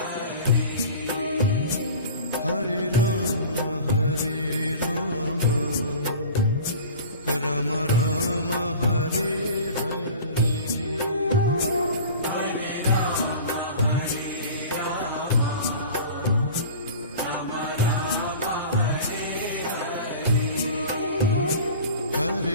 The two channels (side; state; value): both; inverted; correlation -0.38